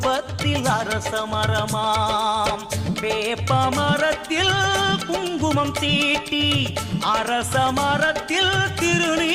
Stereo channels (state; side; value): identical; both; correlation 1.00